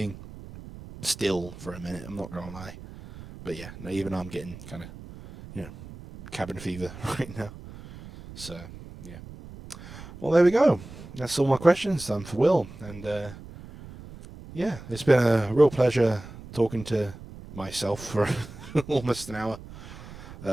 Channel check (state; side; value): noise; right; rumble, 15 dB below the sound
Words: still for a minute. I'm not gonna lie, but yeah, no, even though I'm getting kind of cabin fever right now. So yeah. Well, there we go. That's all my questions done for Will, and it's been a real pleasure talking to myself for almost an hour.